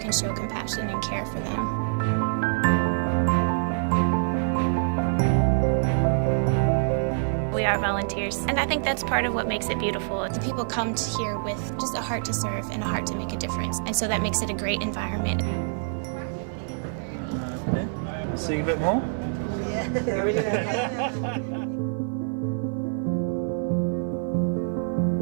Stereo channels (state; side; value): silent; left; 59 dB below the other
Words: show compassion and care for them. We are volunteers, and I think that's part of what makes it beautiful. The people come here with just a heart to serve and a heart to make a difference, and so that makes it a great environment. Sing a bit more?